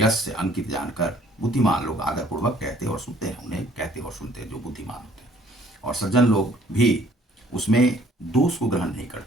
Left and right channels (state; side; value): normal; both; correlation 0.59